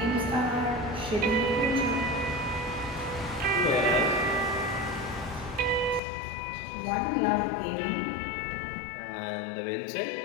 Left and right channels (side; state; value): right; drops out; at 6.0 s